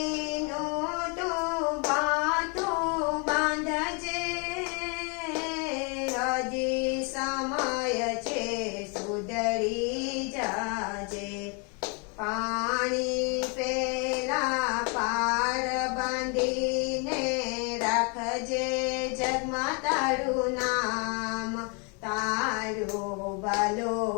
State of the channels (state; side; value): quieter; right; 34.4 dB